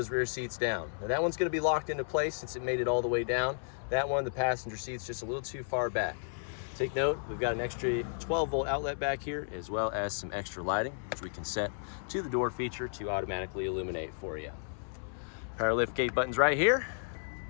rear seats down. Now that one's gonna be locked into place since it made it all the way down. That one, the passenger seat's just a little too far back. Take note, we've got an extra 12-volt outlet back here, as well as some extra lighting, which we can set to the door feature to automatically illuminate for you. Power lift gate buttons right here.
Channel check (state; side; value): silent; right; 56 dB below the other